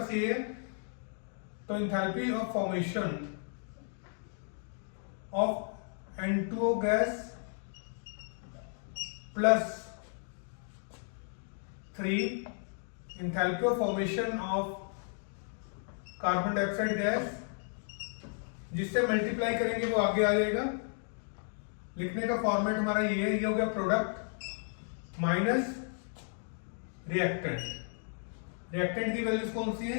ये है, तो enthalpy of formation of N2O gas plus 3 enthalpy of formation of carbon dioxide gas, जिससे मल्टीप्लाई करेंगे वो आगे आ जाएगा। लिखने का फॉर्मेट हमारा ये हो गया, प्रोडक्ट माइनस रिएक्टेंट। रिएक्टेंट की वैल्यूज कौन सी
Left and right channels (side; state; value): right; silent; 55 dB below the other